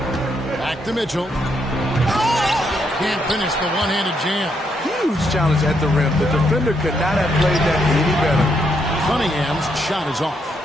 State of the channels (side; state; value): both; normal; correlation 0.77